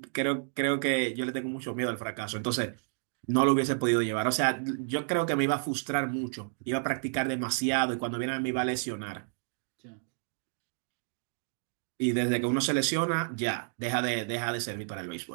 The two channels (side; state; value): left; silent; digital silence